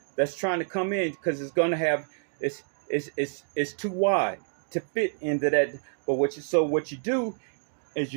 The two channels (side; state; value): left; silent; digital silence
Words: that's trying to come in, because it's going to have it's too wide to fit into that. But what you do is